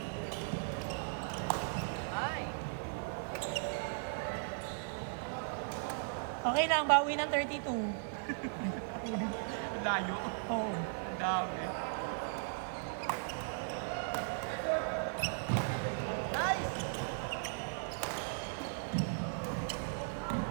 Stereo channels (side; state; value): left; silent; digital silence